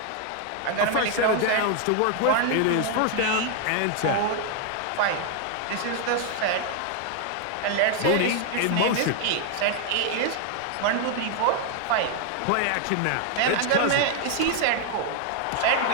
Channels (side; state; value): both; different; correlation 0.00